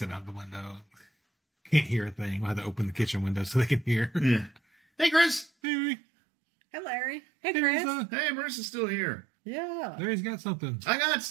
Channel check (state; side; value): drops out; left; at 5.5 s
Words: out the window. Can't hear a thing. We'll have to open the kitchen window so they can hear. Yeah. Hey, Chris. Hey, Hey, Larry. Hey, Chris. Hey, Marisa's still here. Yeah. Larry's got something. I got